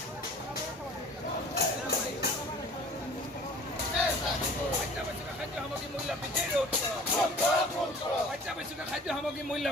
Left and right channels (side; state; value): both; normal; correlation 0.47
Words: অত্যাৱশ্যকীয় খাদ্য সামগ্ৰী মূল্য